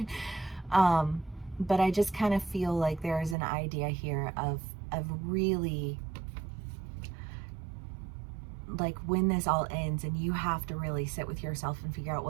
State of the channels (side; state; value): left; drops out; at 3.4 s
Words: But I just kind of feel like there is an idea here of really, like, when this all ends and you have to really sit with yourself and figure out